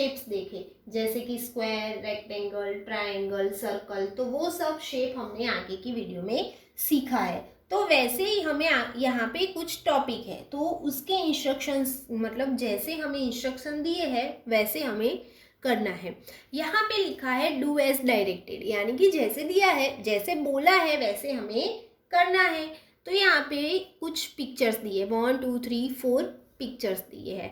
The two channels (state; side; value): identical; both; correlation 1.00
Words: देखे, जैसे कि स्क्वायर, रेक्टेंगल, ट्रायंगल, सर्कल। तो वो सब शेप हमने आगे की वीडियो में सीखा है। तो वैसे ही हमें यहाँ पे कुछ टॉपिक है, तो उसके इंस्ट्रक्शंस, मतलब जैसे हमें इंस्ट्रक्शन दिए हैं वैसे हमें करना है। यहाँ पे लिखा है डू एज डायरेक्टेड, यानी कि जैसे दिया है, जैसे बोला है वैसे हमें करना है। तो यहाँ पे कुछ पिक्चर्स दिए, 1 2 3 4 पिक्चर्स दिए